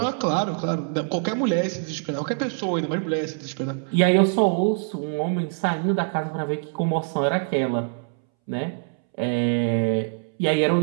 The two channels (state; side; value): silent; left; 62 dB below the other